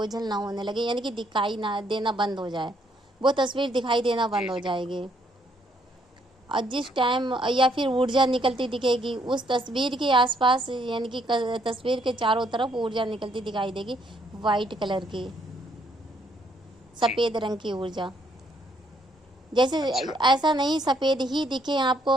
ना होने लगे, यानी कि दिखाई ना देना बंद हो जाए, वो तस्वीर दिखाई देना जी बंद हो जी। जाएगी। और जिस टाइम या फिर ऊर्जा निकलती दिखेगी उस तस्वीर के आसपास, यानी कि तस्वीर के चारों तरफ ऊर्जा निकलती दिखाई देगी, वाइट कलर की, जी। सफ़ेद रंग की ऊर्जा। जैसे अच्छा। ऐसा नहीं सफ़ेद ही दिखे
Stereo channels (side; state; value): both; normal; correlation 0.70